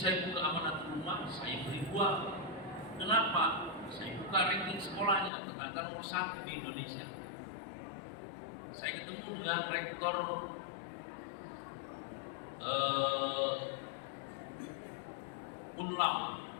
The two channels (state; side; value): drops out; right; at 5.3 s